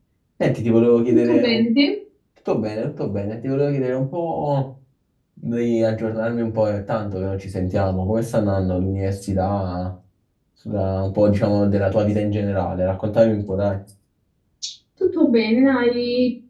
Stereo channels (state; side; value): identical; both; correlation 1.00